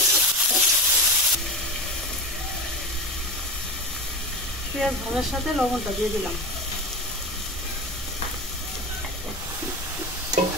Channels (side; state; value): both; normal; correlation 0.25